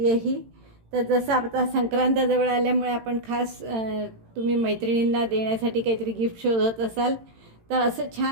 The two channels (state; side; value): late; left; 18 ms